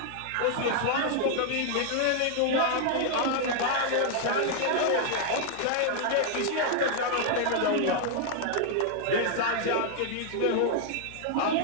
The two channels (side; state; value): both; different; correlation 0.00